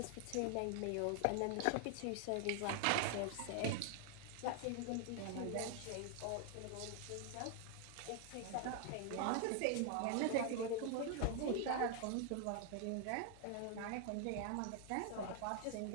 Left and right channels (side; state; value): both; different; correlation 0.00